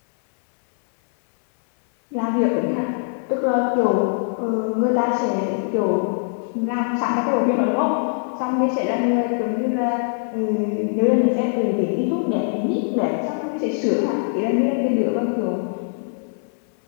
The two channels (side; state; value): right; silent; 61 dB below the other